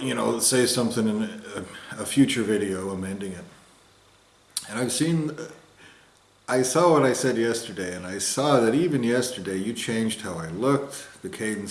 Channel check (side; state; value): both; identical; correlation 1.00